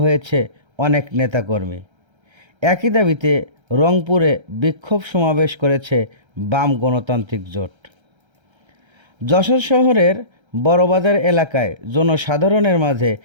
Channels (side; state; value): left; late; 1.3 ms